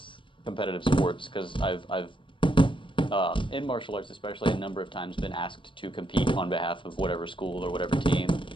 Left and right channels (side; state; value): right; late; 0.24 ms